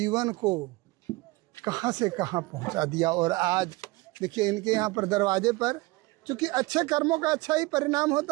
को कहां से कहां पहुंचा दिया। और आज देखिए इनके यहाँ पर दरवाजे पर, चूँकि अच्छे कर्मों का अच्छा ही परिणाम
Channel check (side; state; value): left; quieter; 22.6 dB